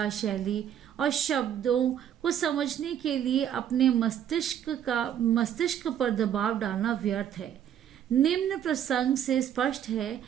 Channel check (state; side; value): quieter; left; 9.8 dB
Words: शैली और शब्दों को समझने के लिए अपने मस्तिष्क पर दबाव डालना व्यर्थ है। निम्न प्रसंग से स्पष्ट है